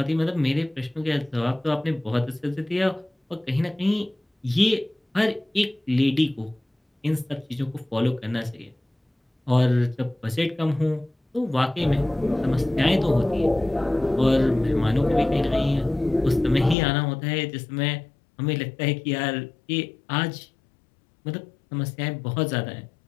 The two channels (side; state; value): right; drops out; at 16.8 s